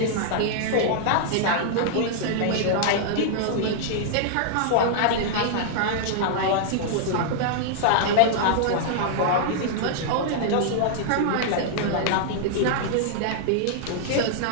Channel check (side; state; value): both; different; correlation -0.01